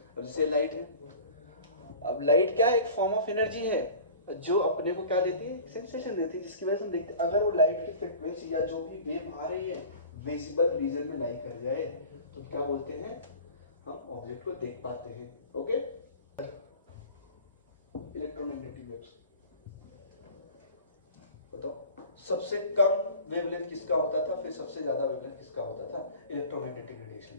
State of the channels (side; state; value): both; inverted; correlation -0.40